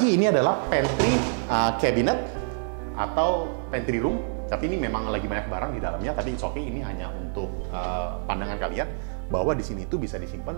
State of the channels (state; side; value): silent; left; 59 dB below the other